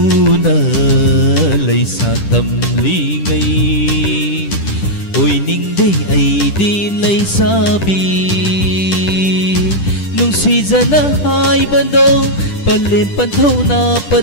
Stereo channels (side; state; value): right; late; 10 ms